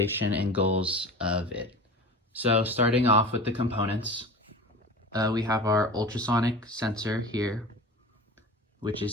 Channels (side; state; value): both; normal; correlation 0.34